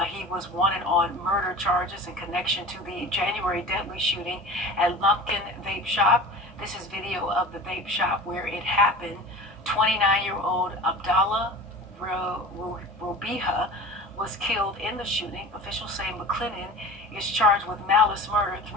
He was wanted on murder charges in connection to the January deadly shooting at Lumpkin Vape Shop. This is video of the vape shop where it happened. 29-year-old Abdallah Robiha was killed in the shooting. Officials say McClennan is charged with malice murder,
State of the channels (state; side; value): normal; both; correlation 0.36